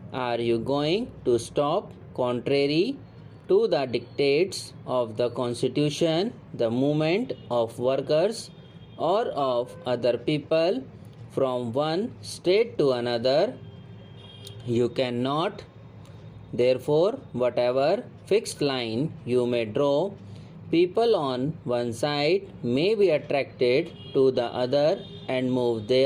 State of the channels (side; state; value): both; identical; correlation 1.00